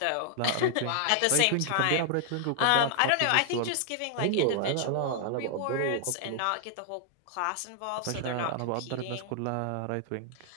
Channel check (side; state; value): both; different; correlation -0.01